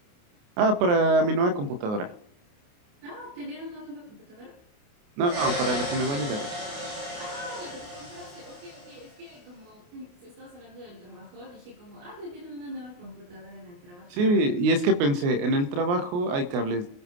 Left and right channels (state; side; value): late; left; 28 ms